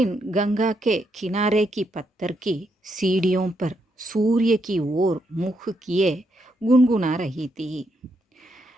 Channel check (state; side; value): normal; both; correlation 0.79